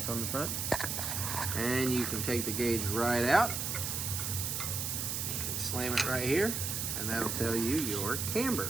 on the front. And you can take the gauge right out. You can slam it right here, and that'll tell you your camber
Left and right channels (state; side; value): noise; right; hiss, 2 dB below the sound